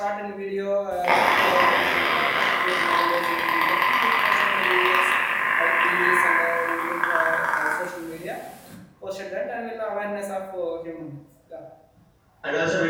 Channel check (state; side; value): identical; both; correlation 1.00